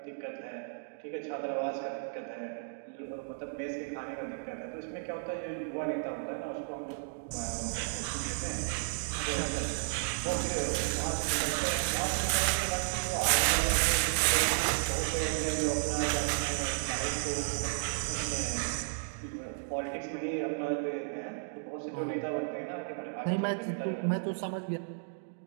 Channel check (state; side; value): silent; left; digital silence